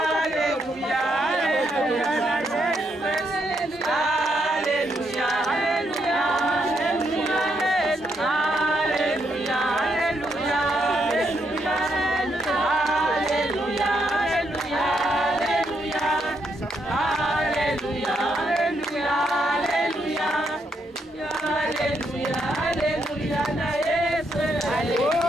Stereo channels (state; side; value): normal; both; correlation 0.77